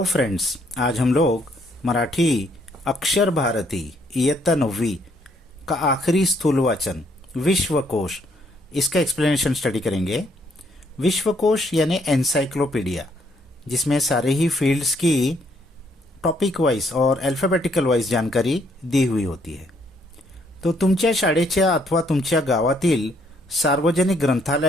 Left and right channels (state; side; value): normal; both; correlation 0.69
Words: friends, आज हम लोग मराठी अक्षर भारती इयत्ता 9वीं का आखिरी स्थूल वाचन विश्वकोश इसका एक्सप्लेनेशन स्टडी करेंगे। विश्वकोश यानी एनसाइक्लोपीडिया, जिसमें सारे ही फील्ड्स की टॉपिक वाइज और अल्फाबेटिकल वाइज जानकारी दी हुई होती है। तो तुमच्या शाळेच्या अथवा तुमच्या गावातील सार्वजनिक